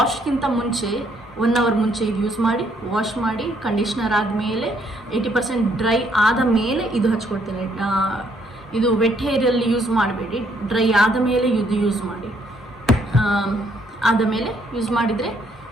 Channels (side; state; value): both; normal; correlation 0.69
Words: ಮುಂಚೆ 1 ಅವರ್ ಮುಂಚೆ ಇದು ಯೂಸ್ ಮಾಡಿ, ವಾಶ್ ಮಾಡಿ, ಕಂಡೀಷ್ನರ್ ಆದಮೇಲೆ 80% ಡ್ರೈ ಆದ ಮೇಲೆ ಇದು ಹಚ್ಕೊಳ್ತೇನೆ. ಇದು ವೆಟ್ ಹೇರಲ್ಲಿ ಯೂಸ್ ಮಾಡಬೇಡಿ, ಡ್ರೈ ಆದ ಮೇಲೆ ಇದು ಯೂಸ್ ಮಾಡಿ. ಆದ ಮೇಲೆ ಯೂಸ್ ಮಾಡಿದರೆ